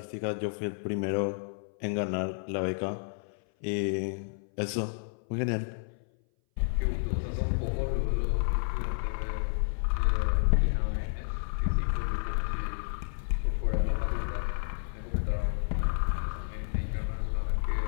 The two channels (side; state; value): right; silent; 57 dB below the other